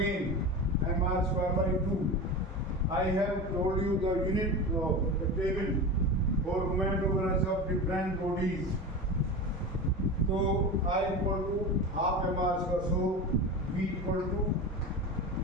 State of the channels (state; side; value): normal; both; correlation 0.27